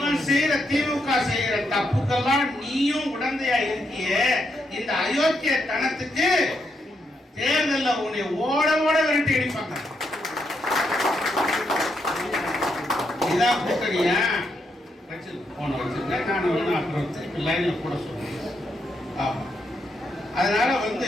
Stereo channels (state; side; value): normal; both; correlation 0.79